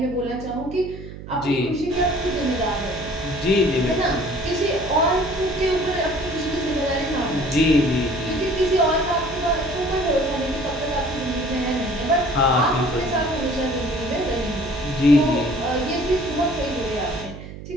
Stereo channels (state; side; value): noise; right; hum, 13 dB below the sound